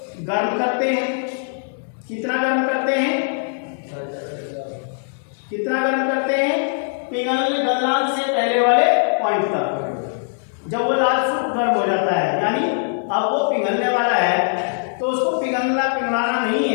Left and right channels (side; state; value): right; silent; digital silence